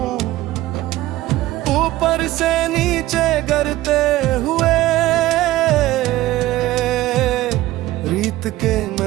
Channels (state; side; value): quieter; left; 16.4 dB